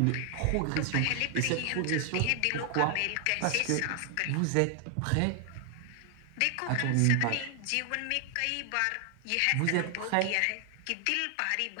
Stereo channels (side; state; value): both; different; correlation 0.00